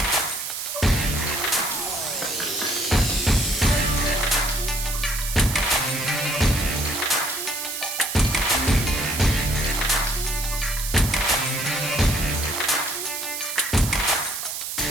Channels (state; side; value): noise; right; hiss, 5 dB below the sound